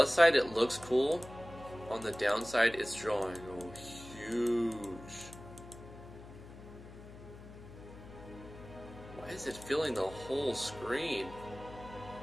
side, it looks cool. On the downside, it's drawing huge. Why is it filling the whole screen?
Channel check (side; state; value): left; noise; hum, 16 dB below the sound